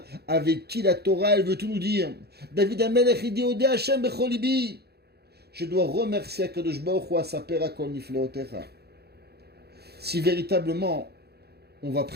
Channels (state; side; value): late; left; 0.47 ms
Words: avec qui la Torah, elle veut tout nous dire. David Amelech, il dit, Odé Hashem becholibi. Je dois remercier Akadosh Baruch Hu asaper akol nifleotecha. Si véritablement, on va